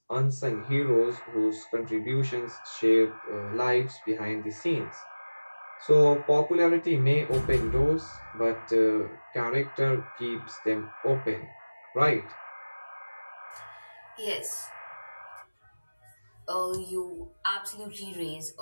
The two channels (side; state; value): both; inverted; correlation -1.00